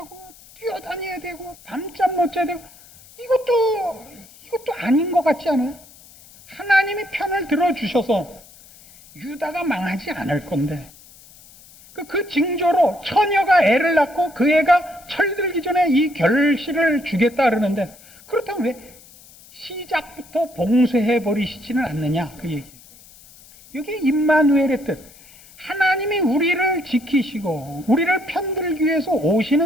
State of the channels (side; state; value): left; noise; hiss, 23 dB below the sound